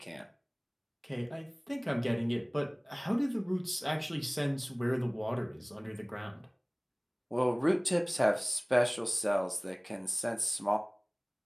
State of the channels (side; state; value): both; identical; correlation 1.00